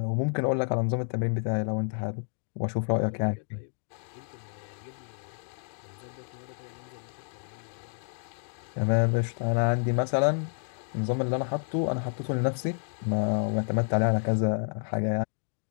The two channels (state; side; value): silent; right; digital silence